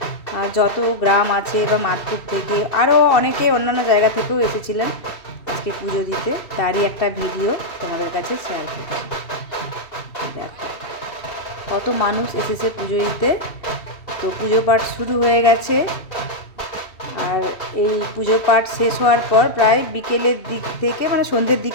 যত গ্রাম আছে বা মাদপুর থেকে আরও অনেকে অন্যান্য জায়গা থেকেও এসেছিলেন আজকে পুজো দিতে, তারই একটা ভিডিও তোমাদের কাছে শেয়ার করছি। দেখো কত মানুষ এসেছে পুজো দিতে। তো পুজো পাঠ শুরু হয়ে গেছে, আর এই পুজো পাঠ শেষ হওয়ার পর প্রায় বিকেলের দিক থেকে মানে সন্ধ্যের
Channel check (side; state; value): right; late; 2.7 ms